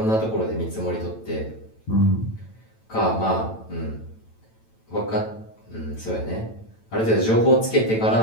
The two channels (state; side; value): late; right; 9.0 ms